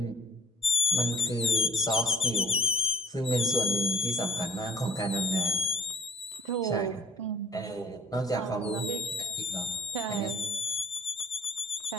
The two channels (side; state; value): both; normal; correlation 0.53